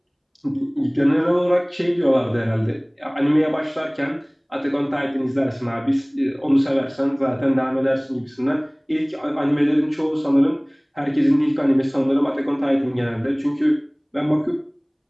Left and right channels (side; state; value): both; identical; correlation 1.00